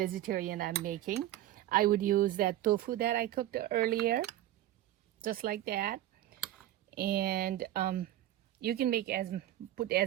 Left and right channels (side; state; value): left; quieter; 13.6 dB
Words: I'm making. I would use that tofu that I cooked earlier, just like that. And you can make put